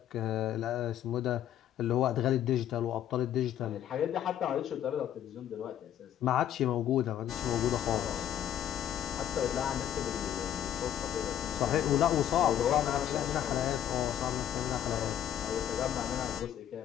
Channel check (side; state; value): right; quieter; 10.7 dB